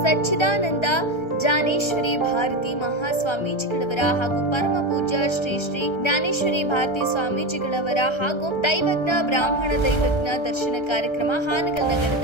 ಸಚ್ಚಿದಾನಂದ ಜ್ಞಾನೇಶ್ವರಿ ಭಾರತಿ ಮಹಾಸ್ವಾಮೀಜಿಗಳವರ ಹಾಗೂ ಪರಮ ಪೂಜ್ಯ ಶ್ರೀ ಶ್ರೀ ಜ್ಞಾನೇಶ್ವರಿ ಭಾರತಿ ಸ್ವಾಮೀಜಿಗಳವರ ಹಾಗೂ ದೈವಜ್ಞ ಬ್ರಾಹ್ಮಣ ದೈವಜ್ಞ ದರ್ಶನ ಕಾರ್ಯಕ್ರಮ ಹಾನಗಲ್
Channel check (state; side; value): late; right; 1.3 ms